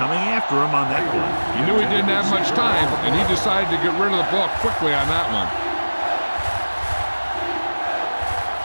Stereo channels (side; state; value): both; inverted; correlation -1.00